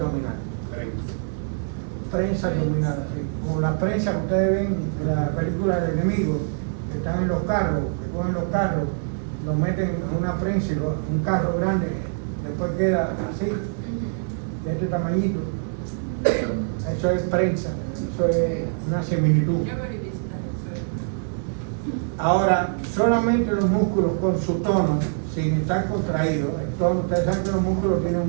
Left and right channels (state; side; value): silent; left; digital silence